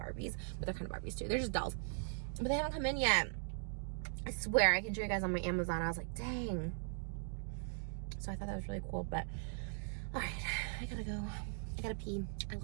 but they're kind of Barbies too. They're just dolls. But they haven't come in yet. I swear, I can show you guys on my Amazon. I was like, dang. So I thought that was really cool, but all right, I gotta go. I gotta pee. I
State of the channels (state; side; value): silent; left; digital silence